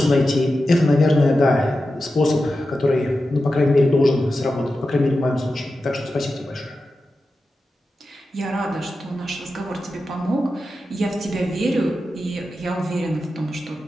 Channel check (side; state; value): both; normal; correlation 0.91